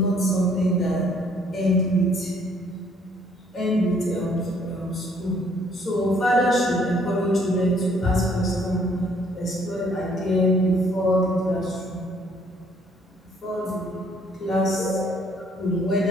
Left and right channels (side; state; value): both; normal; correlation 0.63